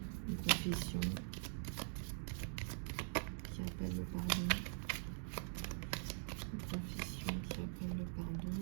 Une confession qui appelle le pardon. Confession qui appelle le pardon.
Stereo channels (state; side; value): silent; left; digital silence